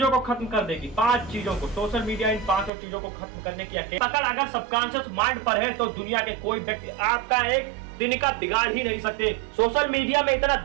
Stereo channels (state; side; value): drops out; left; at 2.7 s